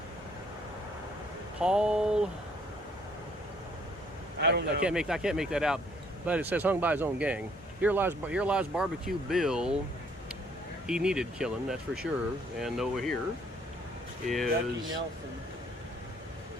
Paul. I don't know. I can't make that out, but it says hung by his own gang. Here lies Barbecue Bill. He needed killing, that's for sure. And over here is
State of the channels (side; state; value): both; normal; correlation 0.63